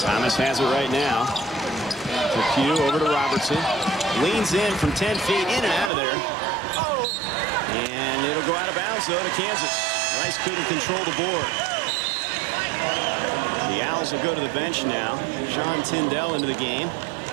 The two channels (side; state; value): left; drops out; at 5.9 s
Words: Thomas has it right now. To Pugh, over to Robertson. Leans in from 10 feet, in and out of there. And it'll go out of bounds, though, to Kansas. Rice couldn't control the board. The Owls will go to the bench now. Sean Tyndall into the game.